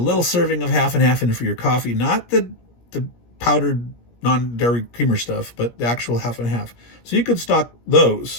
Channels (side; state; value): right; late; 17 ms